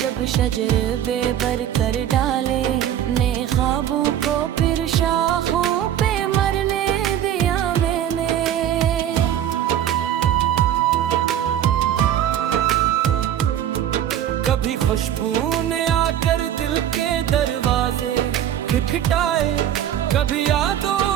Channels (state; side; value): quieter; left; 10.7 dB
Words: जब शजर बेबर कर डाले, ने ख्वाबों को फिर शाखों पे मरने दिया मैंने। कभी खुशबू ने आकर दिल के दरवाजे खटखटाए, कभी यादों